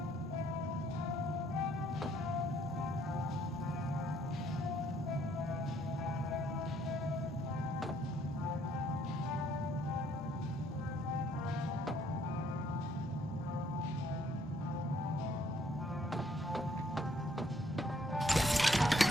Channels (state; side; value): normal; both; correlation 0.66